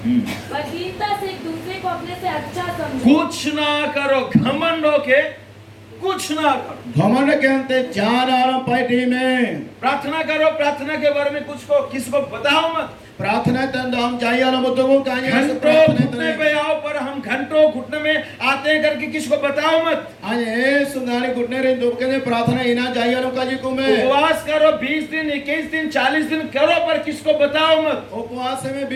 पर दीनता से एक दूसरे को अपने से अच्छा समझो। कुछ ना करो, घमंड होके कुछ ना करो। घमंड के अंते जान आराम पार्टी में प्रार्थना करो, प्रार्थना के बारे में कुछ को किसी को बताओ मत। प्रार्थना तंद हम चाहिए वाला मुद्दों को कहानी घंटों घुटने पे आओ, पर हम घंटों घुटने में आते हैं करके किसी को बताओ मत। आज ए सुंगारी घुटने रे दो के प्रार्थना इना चाहिए वालों का जी को में उपवास करो 20 दिन, 21 दिन, 40 दिन करो, पर किसको बताओ मत। उपवास में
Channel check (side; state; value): both; identical; correlation 1.00